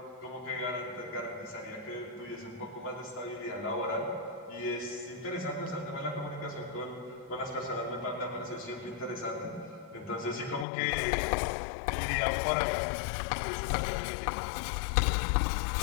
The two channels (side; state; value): right; drops out; at 10.7 s